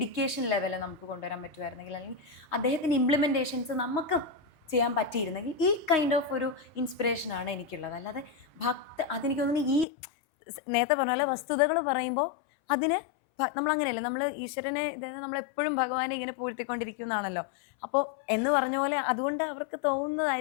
ലെവൽ നമുക്ക് കൊണ്ടുവരാൻ പറ്റുമായിരുന്നെങ്കിൽ, അല്ലെങ്കിൽ അദ്ദേഹത്തിൻ്റെ ഇംപ്ലിമെൻറ്റേഷൻസ് നമുക്ക് ചെയ്യാൻ പറ്റിയിരുന്നെങ്കിൽ, ഈ കൈൻഡ് ഓഫ് ഒരു ഇൻസ്പിറേഷനാണ് എനിക്കുള്ളത്. അല്ലാതെ അതെനിക്ക് തോന്നുന്നു ഈ നേരത്തെ പറഞ്ഞ പോലെ വസ്തുതകൾ പറയുമ്പോൾ അതിന് നമ്മളങ്ങനെയല്ല, നമ്മൾ ഈശ്വരനെ നമ്മളെപ്പോഴും ഭഗവാനെ ഇങ്ങനെ പൂഴ്ത്തിക്കൊണ്ടിരിക്കുന്നതാണല്ലോ. അപ്പോൾ എന്ന് പറഞ്ഞ പോലെ അതുകൊണ്ട് അവർക്ക്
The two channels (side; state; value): right; drops out; at 9.9 s